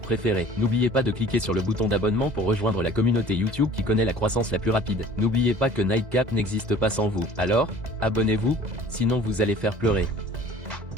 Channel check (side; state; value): left; late; 2.0 ms